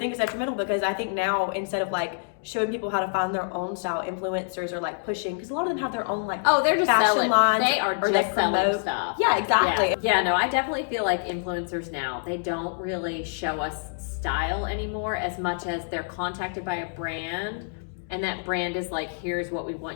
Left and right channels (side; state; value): right; silent; digital silence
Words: it's detrimental because I think now instead of like showing people how to find their own style, influencers are like pushing because a lot of them have their own like they're just fashion selling. lines. They are just selling stuff. Yeah, exactly. Yeah, no, I definitely feel like influencers now, they don't really show us style anymore as much as they're contacted by a brand, and that brand is like, here's what we